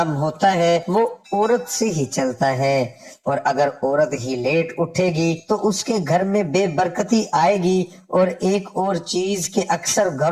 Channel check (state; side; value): identical; both; correlation 1.00